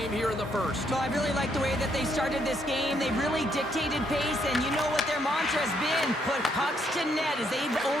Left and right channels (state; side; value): normal; both; correlation 0.73